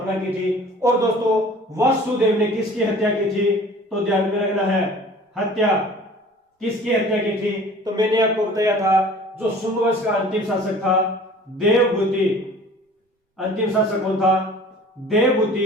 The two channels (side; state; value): both; normal; correlation 0.46